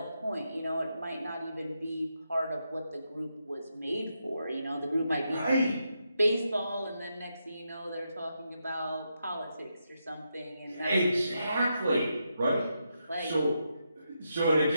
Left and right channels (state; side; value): inverted; both; correlation -0.83